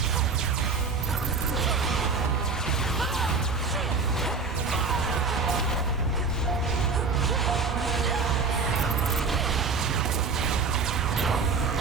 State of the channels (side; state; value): left; quieter; 4.6 dB